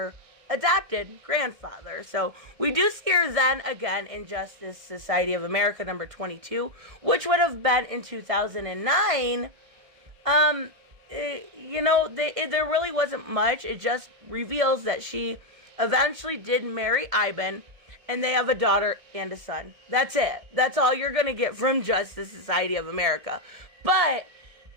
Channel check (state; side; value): late; left; 1.7 ms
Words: adopted grandfather. So we do see her then again in Justice Society of America number 22, which would have been in 2009. There really wasn't much. It just reveals that she eventually did marry Ivan, and they have a daughter and a son. That's it. That's all you're going to get from Justice Society of America. But